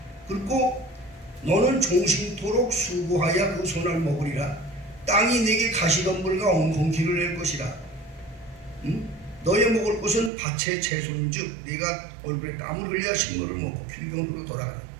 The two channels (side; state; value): left; drops out; at 10.3 s